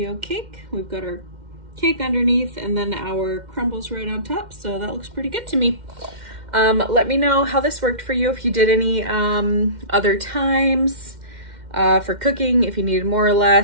cake. We've got our cake underneath and then our crumbles right on top. So that looks pretty good to me. Let me know how this worked for you, if you did any other times for cooking, if you needed more or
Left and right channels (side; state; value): left; late; 2.1 ms